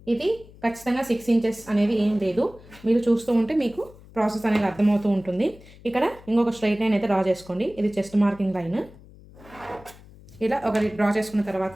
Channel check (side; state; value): left; noise; hum, 22 dB below the sound